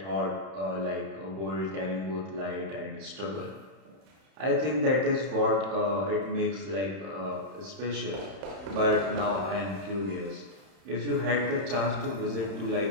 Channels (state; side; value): late; left; 31 ms